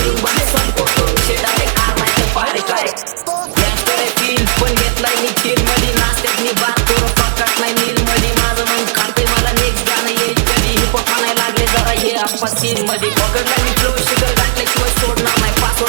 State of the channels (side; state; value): left; silent; digital silence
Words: बाहेर संपवतो विषय डायरेक्ट आर नाही तर पारे काय गँगस्टर आहे फील पण घेतलाय मी चिल मध्ये, नाश्त्यात मी बात करू पकाट नाही नील मध्ये, माझं मन खातंय मला नेक्स्ट गाणं येईल कधी, हिपहॉप म्हणायला लागले जरा हे आप्पा सीन मध्ये, पकडलाय मी फ्लो शिखर गाठल्याशिवाय सोडणार नाही,